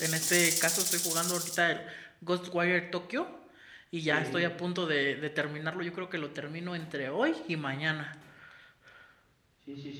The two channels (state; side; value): identical; both; correlation 1.00